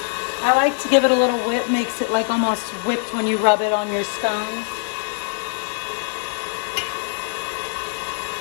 I like to give it a little whip, makes it like almost whipped when you rub it on your scones.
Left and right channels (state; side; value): silent; right; digital silence